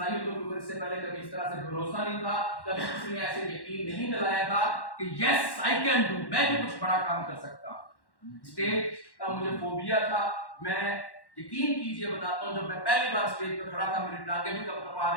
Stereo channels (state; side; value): late; right; 1.1 ms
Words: के ऊपर इससे पहले कभी इस तरह से भरोसा नहीं था, कभी किसी ने ऐसे यकीन नहीं दिलाया था कि यस आई कैन डू, मैं भी कुछ बड़ा काम कर सकता हूं। स्टेज का मुझे फोबिया था। मैं यकीन कीजिए बताता हूं, जब मैं पहली बार स्टेज पर खड़ा था, मेरी टांगें भी कपकपा